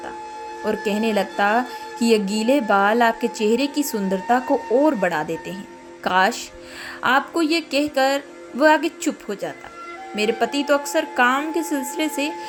और कहने लगता कि यह गीले बाल आपके चेहरे की सुंदरता को और बढ़ा देते हैं। काश आपको ये कहकर वह आगे चुप हो जाता। मेरे पति तो अक्सर काम के सिलसिले से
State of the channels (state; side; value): identical; both; correlation 1.00